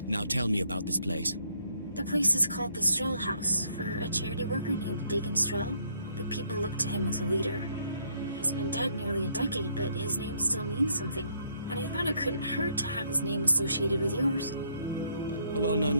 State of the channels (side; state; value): both; inverted; correlation -0.68